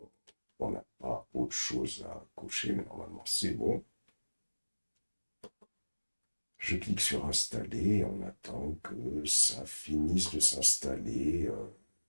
on n'a pas autre chose à cocher, mais normalement c'est bon. Je clique sur installer, on attend que ça finisse de s'installer.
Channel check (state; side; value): inverted; both; correlation -1.00